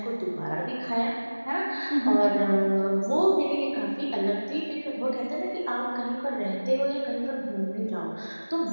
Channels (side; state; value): both; inverted; correlation -1.00